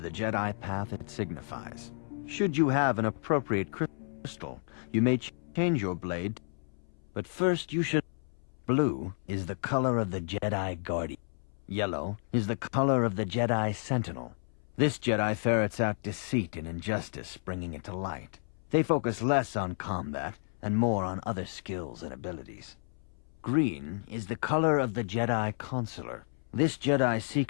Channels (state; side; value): silent; right; 57 dB below the other